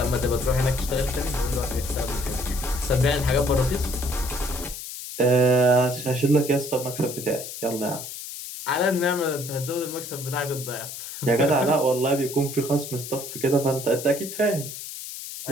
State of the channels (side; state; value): left; noise; hiss, 9 dB below the sound